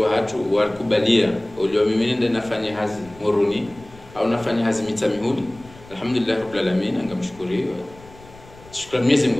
hatu walikubalia ulio mimi nenda nafanya hazi moruni au nafanya hazi mitamihudi alhamdulillah rabbil alamin ngamshukurie shukrani Mwenyezi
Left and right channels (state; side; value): noise; left; rumble, 22 dB below the sound